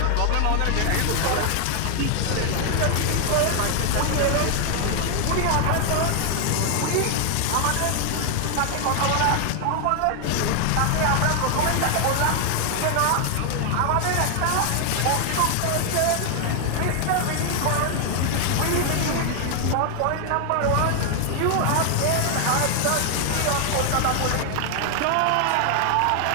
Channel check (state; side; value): different; both; correlation 0.00